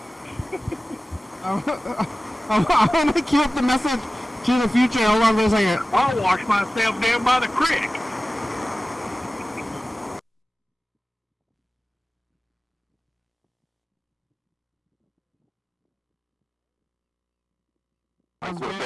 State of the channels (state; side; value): normal; both; correlation 0.96